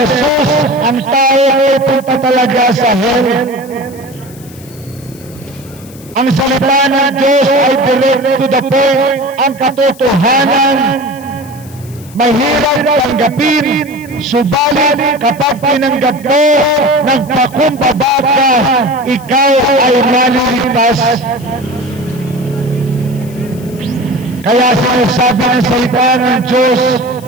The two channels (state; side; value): noise; left; hiss, 22 dB below the sound